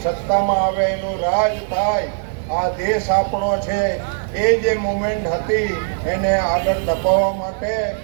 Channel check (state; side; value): silent; left; digital silence